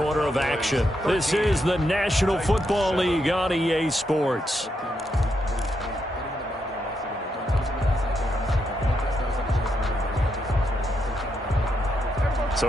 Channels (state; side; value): normal; both; correlation 0.81